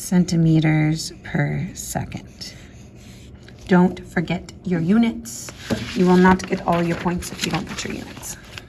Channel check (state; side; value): identical; both; correlation 1.00